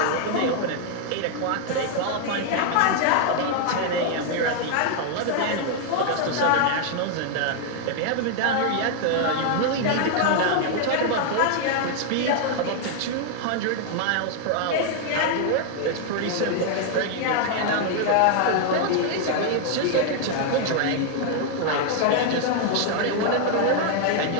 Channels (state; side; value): different; both; correlation 0.00